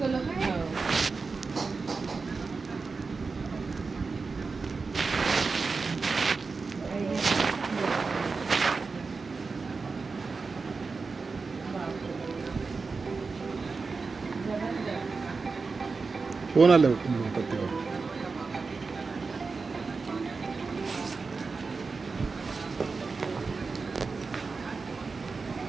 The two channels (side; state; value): left; quieter; 4.4 dB